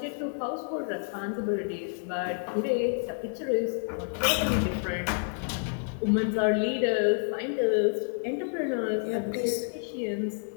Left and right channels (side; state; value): right; silent; 58 dB below the other